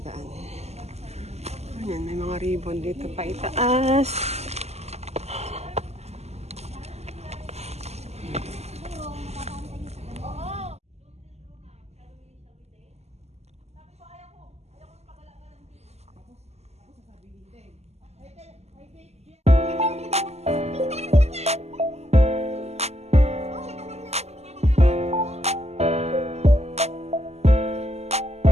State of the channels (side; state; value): left; late; 0.31 ms